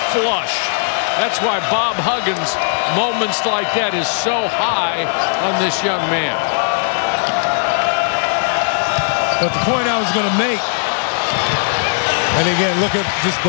flush. That's why Bob Huggins, moments like that, is so high on this young man. But the point I was going to make, and again, look at just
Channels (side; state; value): right; silent; 66 dB below the other